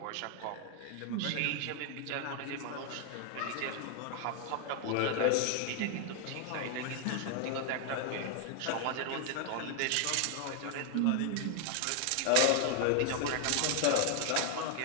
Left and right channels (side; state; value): both; different; correlation 0.00